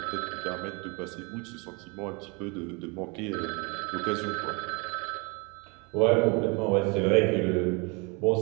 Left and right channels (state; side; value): quieter; left; 30.3 dB